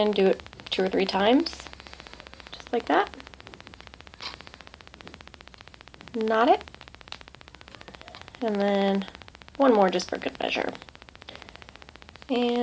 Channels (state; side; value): identical; both; correlation 1.00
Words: do it 2 or 3 times, just like that. Knot it, and then one more just for good measure,